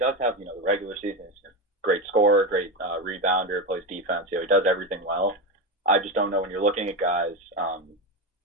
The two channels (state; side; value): normal; both; correlation 0.16